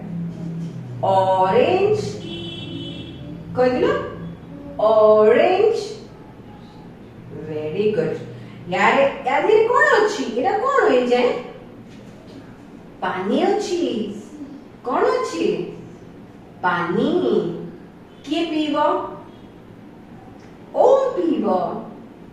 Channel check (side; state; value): both; identical; correlation 1.00